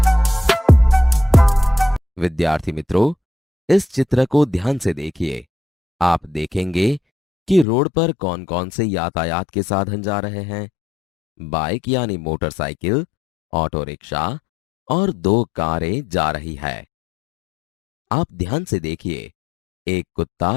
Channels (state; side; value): drops out; right; at 7.7 s